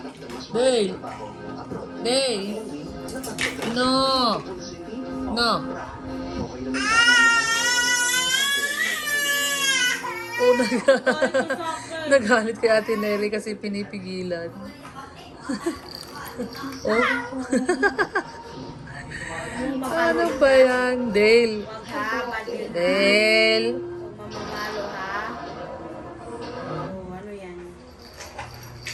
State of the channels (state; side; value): identical; both; correlation 1.00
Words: Dale! No! Oh, nagalit kay Ate Neri kasi pinipigilan. Oh. Ano ba yan? Dale. Dale. Mamamalo ha. Oh, ano yan?